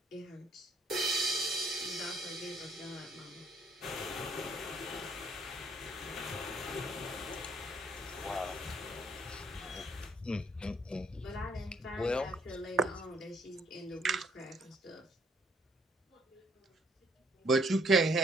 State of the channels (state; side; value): normal; both; correlation 0.66